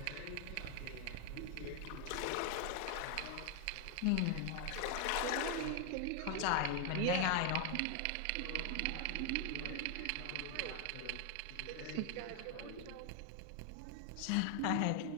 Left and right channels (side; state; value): both; different; correlation 0.00